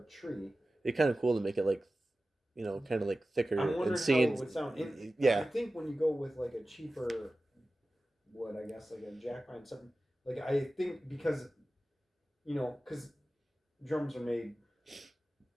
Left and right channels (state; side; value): normal; both; correlation 0.95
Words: tree. It's kind of cool to make it like, kind of like thicker I'm wondering and how seeing. it would sound. I Yeah, think when you go with like a cheaper wood, I guess like a jack pine, something like I think because drums are made